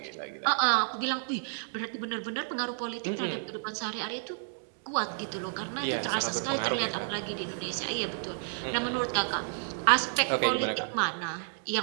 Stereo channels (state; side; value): silent; left; digital silence